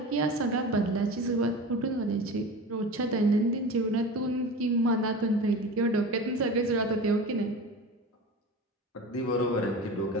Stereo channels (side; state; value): both; normal; correlation 0.32